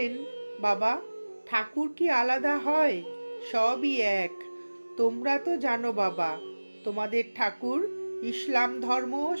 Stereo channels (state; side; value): inverted; both; correlation -1.00